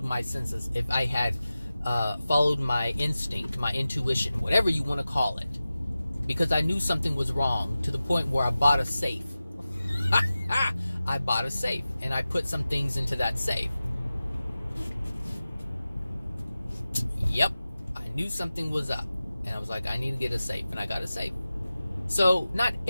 my senses, if I had followed my instinct, my intuition, whatever you want to call it. Because I knew something was wrong to the point where I bought a safe. I bought a safe, and I put some things into that safe. Yep, I knew something was up. And I was like, I need to get a safe, and I got a safe. So, not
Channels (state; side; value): inverted; both; correlation -0.95